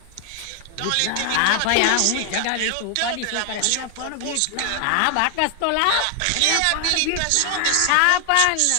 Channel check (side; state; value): both; different; correlation 0.00